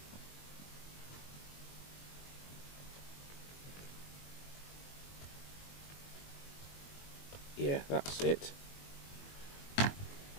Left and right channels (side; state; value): right; late; 21 ms